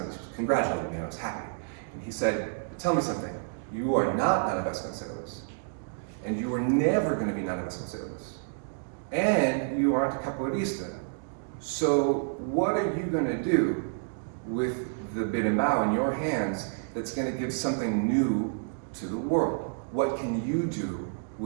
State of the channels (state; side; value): silent; left; digital silence